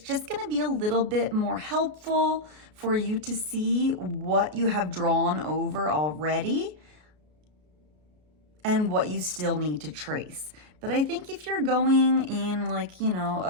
just going to be a little bit more helpful for you to see what you have drawn over already and what you still need to trace. But I think if you're going in like,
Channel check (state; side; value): late; left; 33 ms